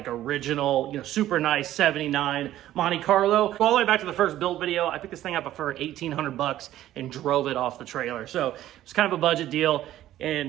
original, you know, super nice 79 Monte Carlo. All the way back to the first build video, I picked this thing up for $1,800 and drove it off the trailer. So it's kind of a budget deal.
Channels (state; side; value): quieter; left; 13.4 dB